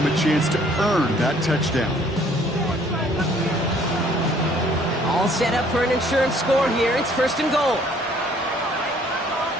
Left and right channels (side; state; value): both; normal; correlation 0.60